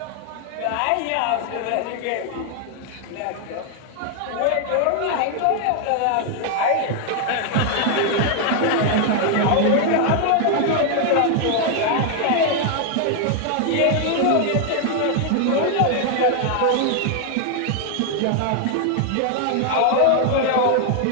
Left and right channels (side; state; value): both; different; correlation 0.00